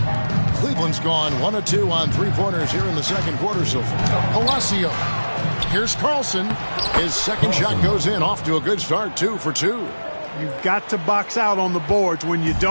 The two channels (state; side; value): inverted; both; correlation -1.00